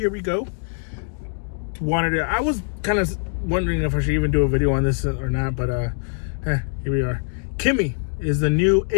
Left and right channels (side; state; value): right; silent; 64 dB below the other